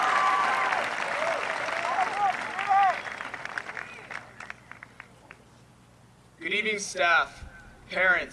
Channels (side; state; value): both; identical; correlation 1.00